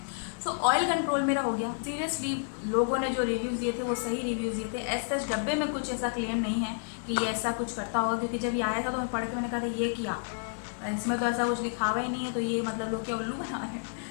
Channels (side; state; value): right; silent; 58 dB below the other